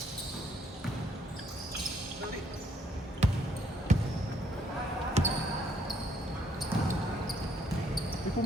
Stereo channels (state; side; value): normal; both; correlation 0.68